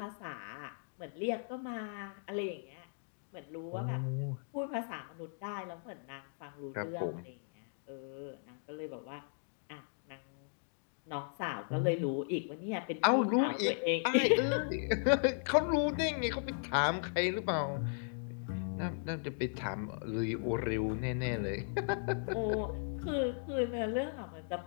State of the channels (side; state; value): right; silent; digital silence